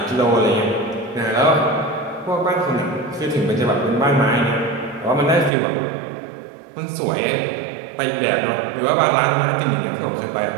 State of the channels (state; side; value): drops out; left; at 5.5 s